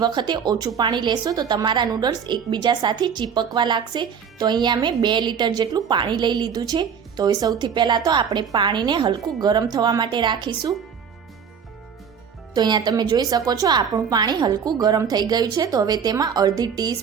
વખતે ઓછું પાણી લેશો તો તમારા નૂડલ્સ એકબીજા સાથે ચીપકવા લાગશે। તો અહીંયા મેં 2 લીટર જેટલું પાણી લઈ લીધું છે। તો હવે સૌથી પહેલાં તો આપણે પાણીને હલકું ગરમ થવા માટે રાખીશું। તો અહીંયા તમે જોઈ શકો છો આપણું પાણી હલકું ગરમ થઈ ગયું છે। તો હવે તેમાં અડધી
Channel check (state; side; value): quieter; left; 7.1 dB